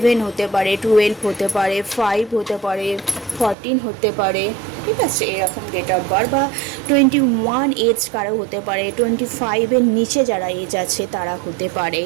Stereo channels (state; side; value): drops out; left; at 3.6 s